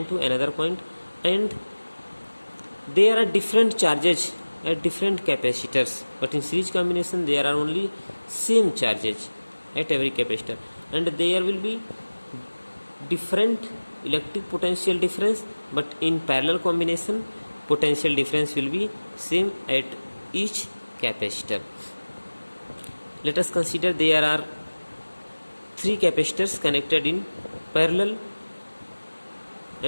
to another point, and there are different charges at different capacitors, but in series combination there are only same charges at every capacitor, and there will be different electric potential difference, but in parallel combination potential difference will be same at each capacitor. Let us consider there are three capacitors connected in parallel,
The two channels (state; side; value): inverted; both; correlation -1.00